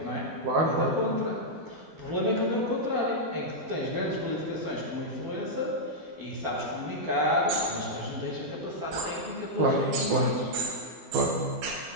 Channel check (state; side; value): late; left; 12 ms